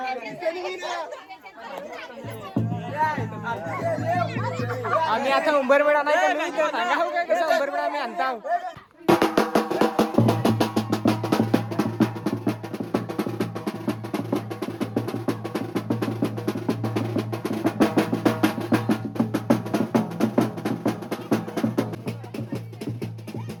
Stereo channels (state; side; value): identical; both; correlation 1.00